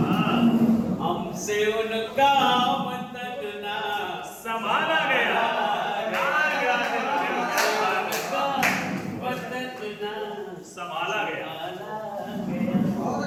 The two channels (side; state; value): both; identical; correlation 1.00